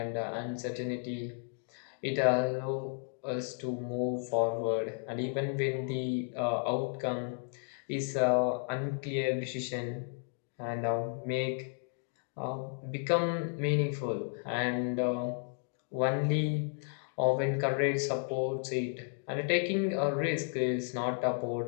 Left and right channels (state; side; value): silent; right; 56 dB below the other